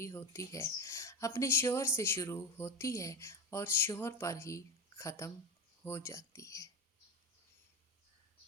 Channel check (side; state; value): both; normal; correlation 0.20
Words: ہوتی ہے، اپنے شوہر سے شروع ہوتی ہے اور شوہر پر ہی ختم ہو جاتی ہے۔